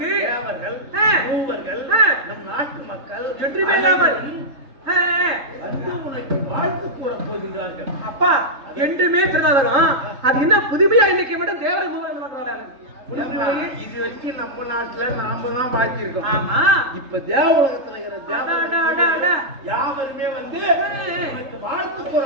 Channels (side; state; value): left; late; 3.7 ms